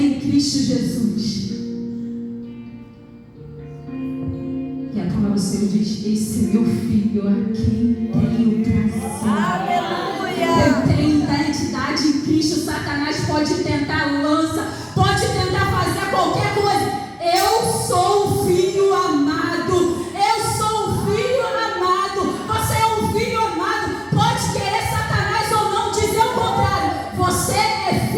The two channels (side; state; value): both; identical; correlation 1.00